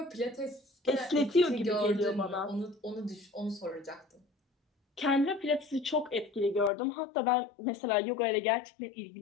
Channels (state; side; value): drops out; right; at 6.7 s